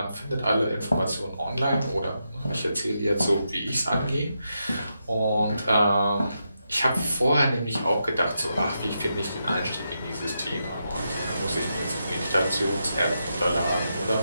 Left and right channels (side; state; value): both; inverted; correlation -0.85